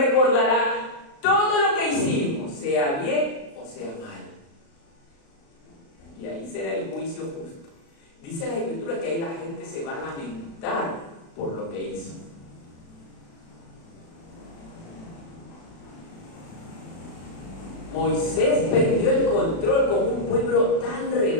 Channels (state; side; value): late; right; 36 ms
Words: todo lo que hicimos, sea bien o sea mal. Y ahí será el juicio justo. Dice la Escritura que ahí la gente se va a lamentar por lo que hizo. Moisés perdió el control con un pueblo tan